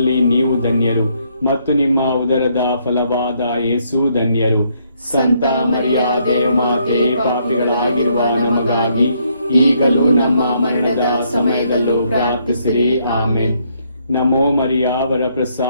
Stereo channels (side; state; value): both; inverted; correlation -0.71